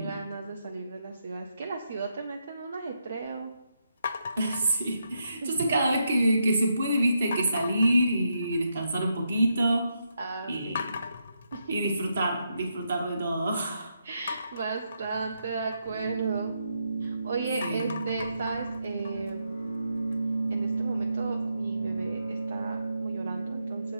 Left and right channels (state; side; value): inverted; both; correlation -0.81